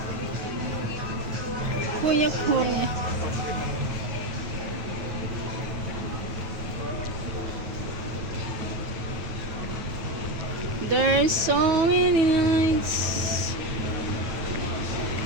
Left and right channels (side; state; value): left; late; 9.0 ms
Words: There's so many lights.